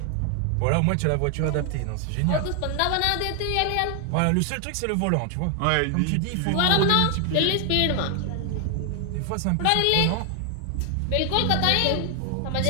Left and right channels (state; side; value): different; both; correlation 0.00